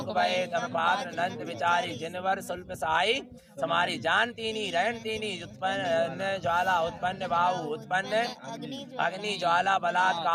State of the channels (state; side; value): identical; both; correlation 1.00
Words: भये तम पात्र अनंत विचारी जिनवर सुल्प साई समारी जानतीनी रहनतीनी उत्पन्न ज्वाला उत्पन्न बाहु उत्पन्न अग्नि ज्वाला बलात्